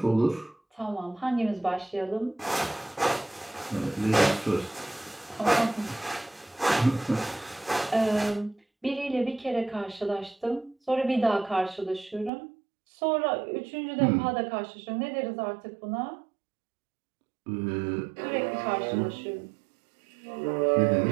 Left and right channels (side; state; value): left; drops out; at 12.3 s